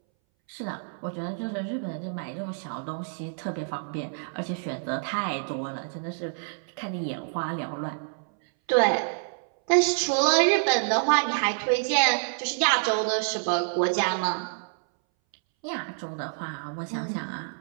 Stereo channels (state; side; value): silent; left; 60 dB below the other